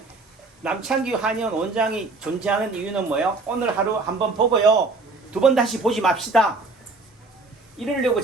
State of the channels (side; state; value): left; quieter; 3.5 dB